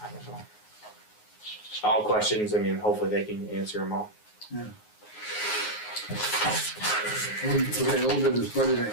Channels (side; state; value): right; late; 9.5 ms